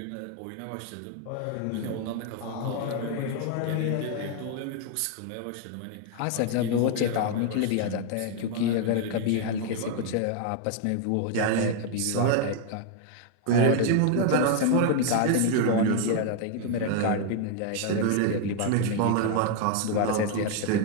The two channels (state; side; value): different; both; correlation 0.00